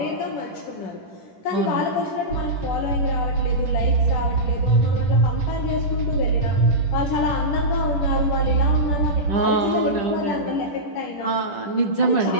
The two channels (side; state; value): right; late; 10 ms